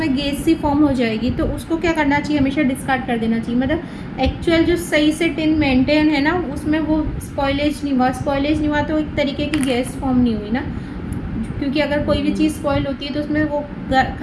गैस सी फॉर्म हो जाएगी, तो उसको क्या करना चाहिए, हमेशा डिस्कार्ड कर देना चाहिए। मतलब एक्चुअल जो सही से टिन मेंटेन है ना उसमें वो स्पॉइलेज नहीं हुआ तो एक तरीके की गैस फॉर्म नहीं हुई ना, क्योंकि अगर कोई भी चीज़ स्पॉइल होती है तो उसमें वो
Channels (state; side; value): identical; both; correlation 1.00